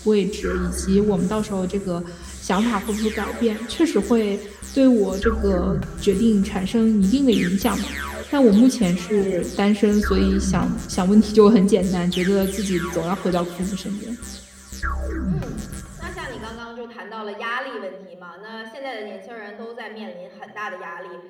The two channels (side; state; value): both; identical; correlation 1.00